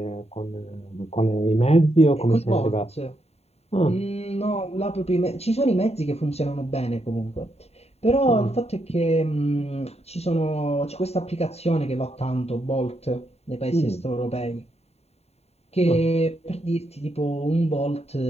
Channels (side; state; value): right; late; 0.30 ms